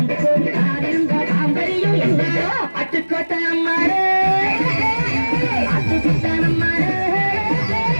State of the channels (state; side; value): inverted; both; correlation -1.00